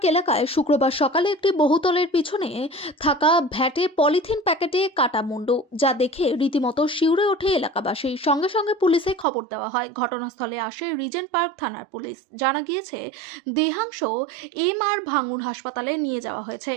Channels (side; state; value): left; drops out; at 9.2 s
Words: এলাকায় শুক্রবার সকালে একটি বহুতলের পিছনে থাকা ভ্যাটে পলিথিন প্যাকেটে কাটা মুন্ডু, যা দেখে রীতিমতো শিউরে ওঠে এলাকাবাসী। সঙ্গে সঙ্গে পুলিশে খবর দেওয়া হয়। ঘটনাস্থলে আসে রিজেন্ট পার্ক থানার পুলিশ। জানা গিয়েছে, দেহাংশ MR ভাঙুর হাসপাতালে নিয়ে যাওয়া হয়েছে।